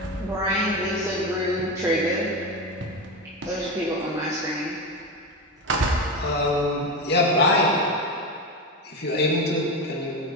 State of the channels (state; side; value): normal; both; correlation 0.18